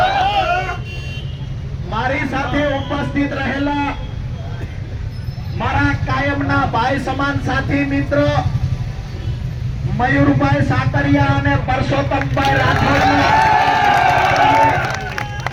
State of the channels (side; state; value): both; identical; correlation 1.00